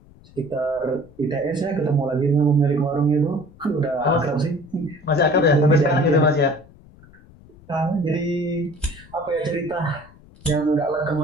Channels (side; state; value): left; noise; rumble, 24 dB below the sound